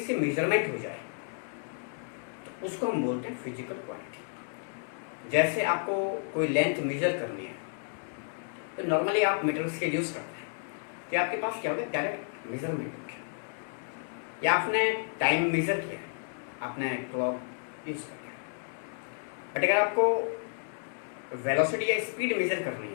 मेजरमेंट हो जाए तो उसको हम बोलते हैं फिजिकल क्वांटिटी। जैसे आपको कोई लेंथ मेजर करनी है तो नॉर्मली आप मीटर स्केल यूज करते हैं, तो आपके पास क्या होगा, डायरेक्ट मेजरमेंट हो गया, या आपने टाइम मेजर किया, आपने क्लॉक यूज कर लिया। बट अगर आपको वेलोसिटी या स्पीड मेजर करनी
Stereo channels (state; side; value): silent; right; 57 dB below the other